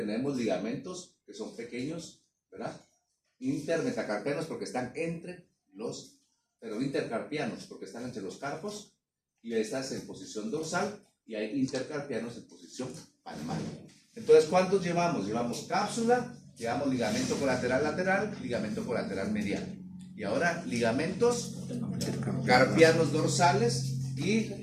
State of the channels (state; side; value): identical; both; correlation 1.00